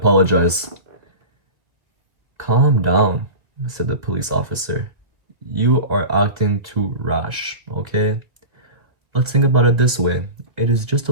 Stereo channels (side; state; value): left; late; 1.7 ms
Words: "Calm down," said the police officer. "You are acting too rash, okay? Let's think about it this way. It is just a